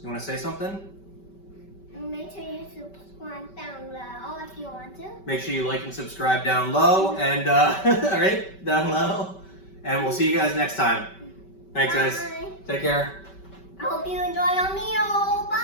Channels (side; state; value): right; late; 5.2 ms